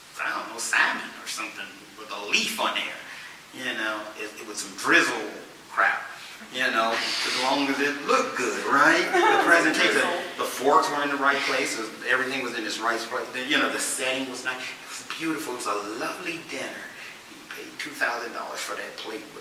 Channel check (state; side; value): identical; both; correlation 1.00